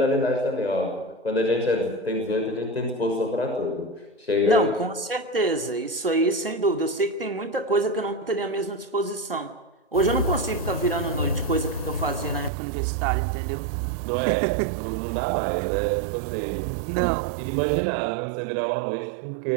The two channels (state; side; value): drops out; left; at 12.5 s